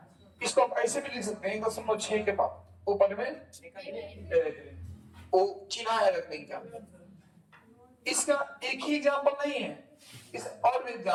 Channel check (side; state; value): both; identical; correlation 1.00